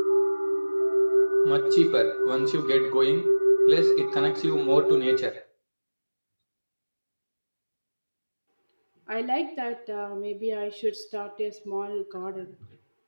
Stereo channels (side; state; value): both; inverted; correlation -1.00